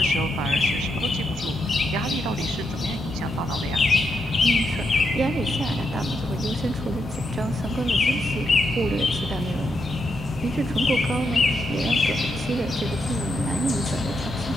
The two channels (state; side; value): normal; both; correlation 0.82